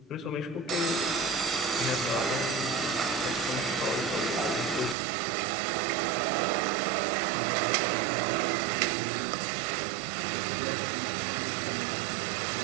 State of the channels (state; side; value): drops out; left; at 5.0 s